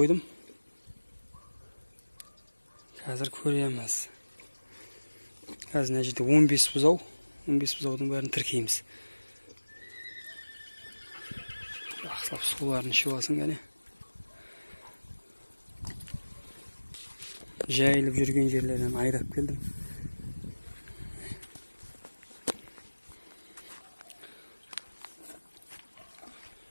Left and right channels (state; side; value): inverted; both; correlation -1.00